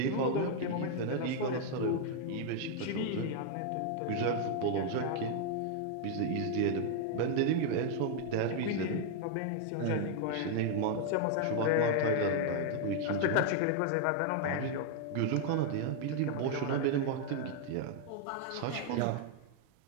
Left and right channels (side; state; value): both; different; correlation 0.00